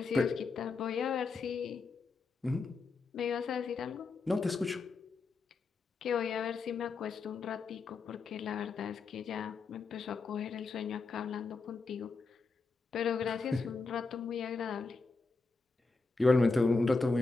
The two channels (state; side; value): quieter; right; 4.1 dB